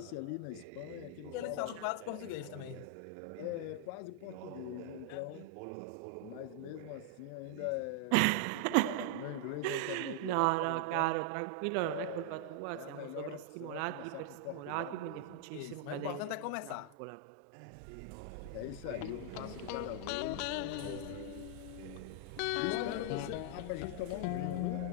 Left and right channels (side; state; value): both; different; correlation -0.01